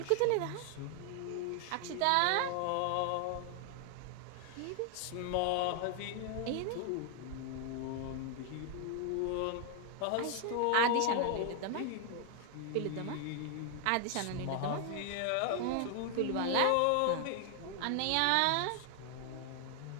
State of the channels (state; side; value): different; both; correlation 0.00